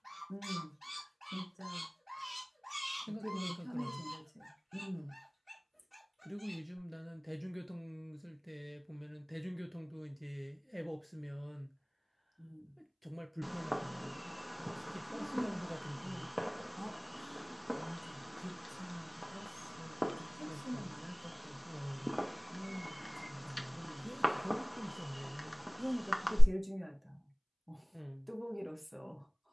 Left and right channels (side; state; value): both; identical; correlation 1.00